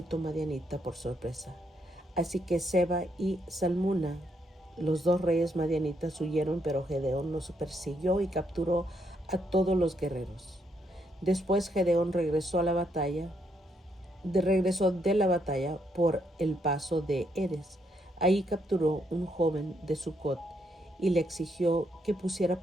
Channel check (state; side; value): normal; both; correlation 0.75